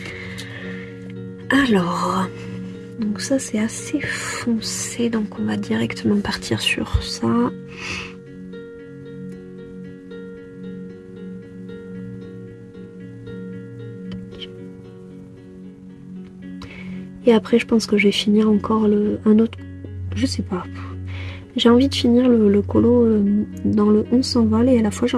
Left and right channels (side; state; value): both; identical; correlation 1.00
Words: Alors, donc ça c'est assez foncé, donc on va directement partir sur ça. Et après je pense que je vais finir encore un autre, je sais pas. J'ai envie de finir le colo dans le On s'envole et à la fois j'ai